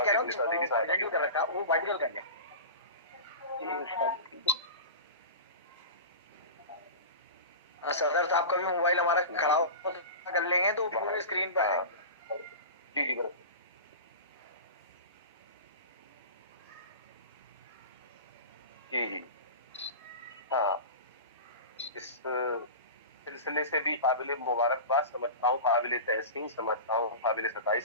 कह रहा हूँ कर रखा वो वर्टिकल कर लें। सदर साहब का भी मोबाइल हमारा खड़ा कर लेंगे तो पूरे स्क्रीन पर आएंगे। जी जी जी जी हाँ, इस सिलसिले से भी काबिल मुबारकबाद समझता हूँ, काबिल तहसीन समझता हूँ, काबिल सताइश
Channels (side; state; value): both; inverted; correlation -0.30